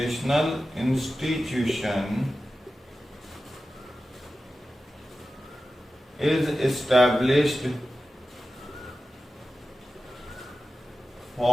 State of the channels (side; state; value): both; normal; correlation 0.93